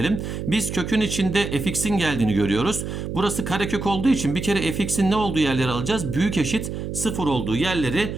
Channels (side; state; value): right; noise; hum, 5 dB below the sound